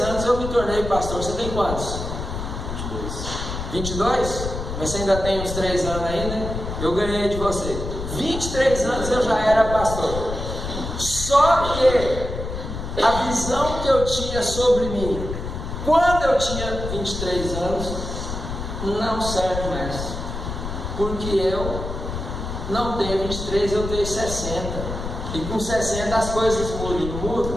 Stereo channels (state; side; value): noise; left; rumble, 6 dB below the sound